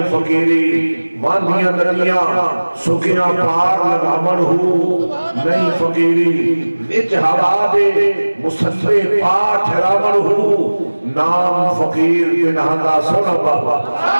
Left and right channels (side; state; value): both; inverted; correlation -1.00